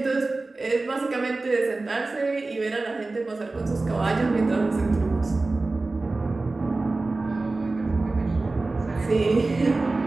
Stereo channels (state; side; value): quieter; left; 3.3 dB